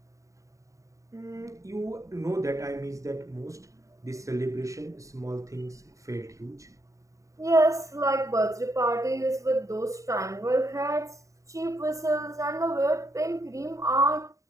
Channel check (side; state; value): left; late; 0.16 ms